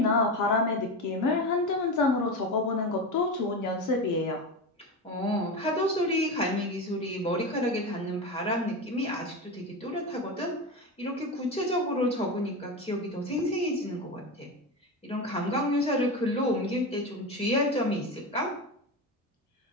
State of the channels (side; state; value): both; normal; correlation 0.21